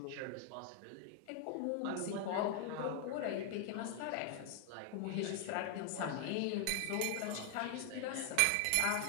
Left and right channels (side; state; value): both; different; correlation 0.00